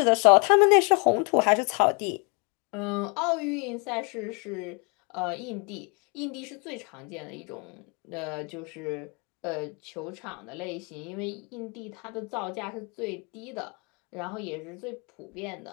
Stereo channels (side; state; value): right; quieter; 33.8 dB